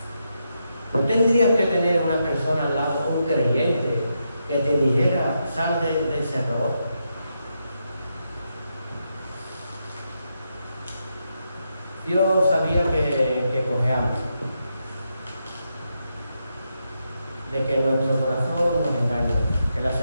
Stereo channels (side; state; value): both; inverted; correlation -0.83